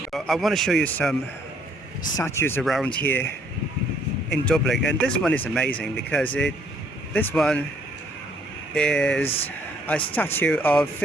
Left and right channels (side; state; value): both; normal; correlation 0.65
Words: I want to show you some statues around here in Dublin, and this one is amazing because this one is a statue of